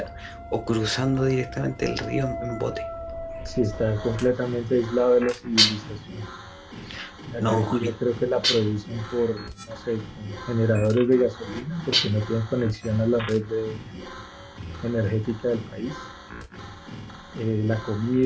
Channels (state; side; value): identical; both; correlation 1.00